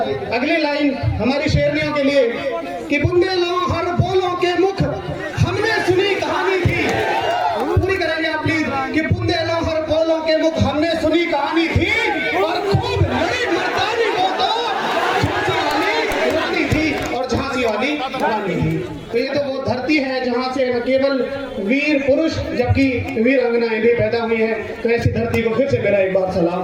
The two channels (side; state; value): both; identical; correlation 1.00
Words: अगली लाइन हमारी शेरनियों के लिए कि बुंदेलों हर बोलों के मुख हमने सुनी कहानी थी। पूरी करेंगे आप प्लीज। कि बुंदेलों हर बोलों के मुख हमने सुनी कहानी थी, और खूब लड़ी मर्दानी वो तो झांसी वाली रानी थी, और झांसी वाली रानी थी। तो ये तो वो धरती है जहाँ से न केवल वीर पुरुष जबकि वीर अंगनाएं भी पैदा हुई हैं। तो ऐसी धरती को फिर से मेरा एक बार